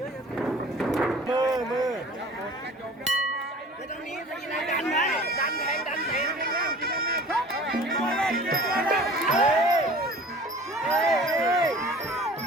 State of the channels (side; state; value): both; normal; correlation 0.45